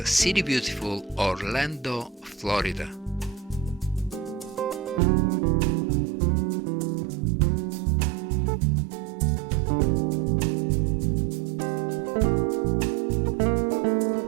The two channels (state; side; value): drops out; left; at 5.0 s